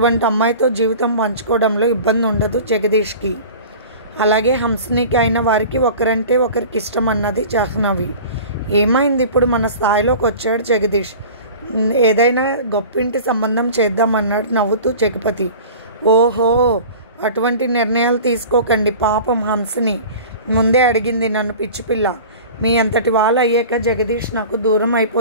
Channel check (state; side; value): inverted; both; correlation -0.39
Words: అమ్మాయితో జీవితం పంచుకోవడంలో ఇబ్బంది ఉండదు జగదీష్కి. అలాగే హంసినికి అయిన వారికి ఒకరంటే ఒకరికి ఇష్టం అన్నది జాహ్నవి. ఏమైంది, ఇప్పుడు మన స్థాయిలోకి వచ్చాడు జగదీష్, ఏదైనా గొప్పింటి సంబంధం చేద్దామన్నాడు నవ్వుతూ జగపతి. ఓహో, అటువంటి నిర్ణయాలు తీసుకోకండి. పాపం హంసిని ముందే అడిగింది నన్ను, పిచ్చిపిల్ల. మీ అంతటి వాళ్ళు అయ్యాక జగదీష్ నాకు దూరం